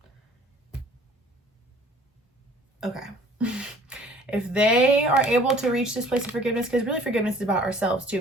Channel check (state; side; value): normal; both; correlation 0.52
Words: okay. If they are able to reach this place of forgiveness, because really forgiveness is about ourselves too,